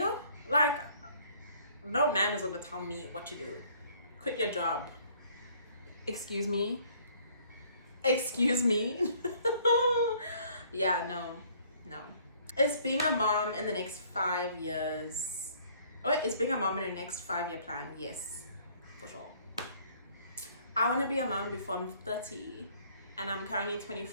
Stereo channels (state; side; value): inverted; both; correlation -0.59